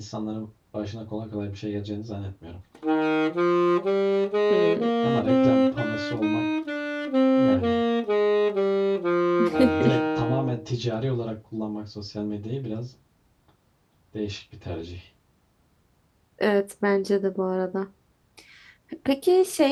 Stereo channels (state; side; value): identical; both; correlation 1.00